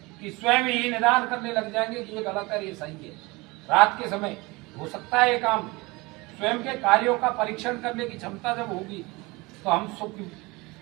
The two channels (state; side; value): quieter; left; 23.9 dB